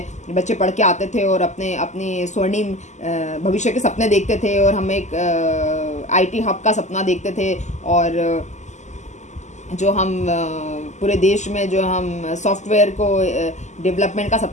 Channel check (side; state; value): right; late; 0.34 ms